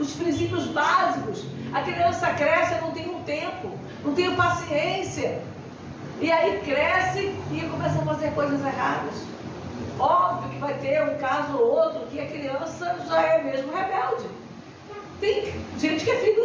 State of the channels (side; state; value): both; identical; correlation 1.00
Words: princípios básicos. A criança cresce, eu não tenho tempo, não tenho paciência. E aí cresce e começa a fazer coisas erradas. Óbvio que vai ter um caso ou outro que a criança já é mesmo rebelde. Tem gente que é filho